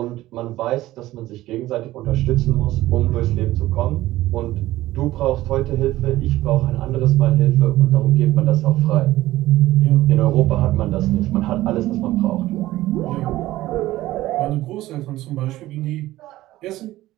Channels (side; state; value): left; quieter; 16.1 dB